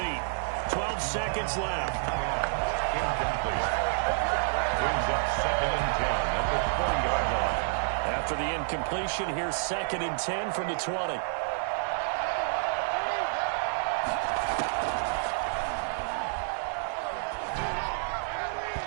12 seconds left. Incomplete. Brings up 2nd and 10 at the 40-yard line. After the incompletion, here's 2nd and 10 from the 20.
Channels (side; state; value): left; silent; digital silence